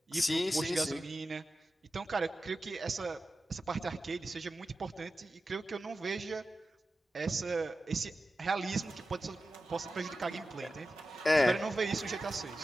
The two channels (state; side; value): normal; both; correlation 0.93